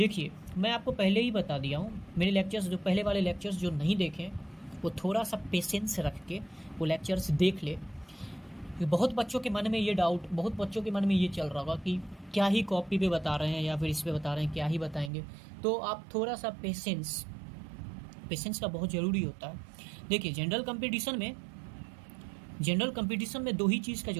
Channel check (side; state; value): left; drops out; at 15.1 s